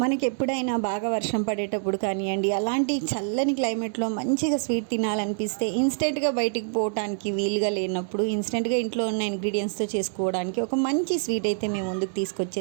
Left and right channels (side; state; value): left; silent; digital silence